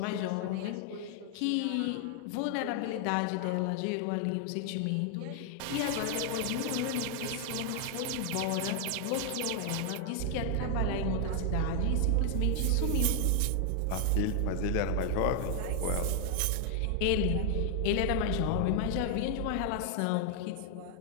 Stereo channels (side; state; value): both; different; correlation 0.00